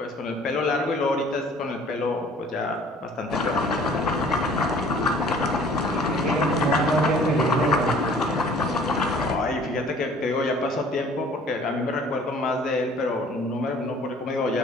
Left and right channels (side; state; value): both; normal; correlation 0.52